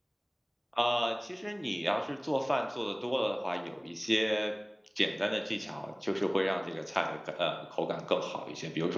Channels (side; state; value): both; identical; correlation 1.00